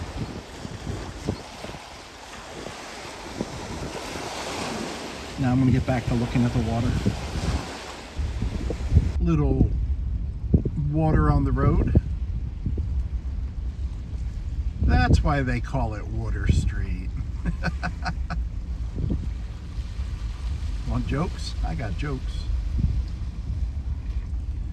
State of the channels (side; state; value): both; identical; correlation 1.00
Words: Now I'm going to get back to looking at the water. Little water on the road. That's why they call it Water Street. Want jokes? I got jokes.